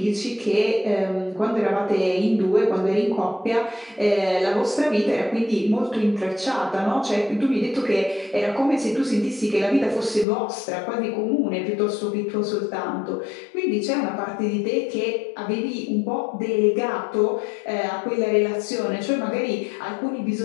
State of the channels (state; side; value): drops out; right; at 10.2 s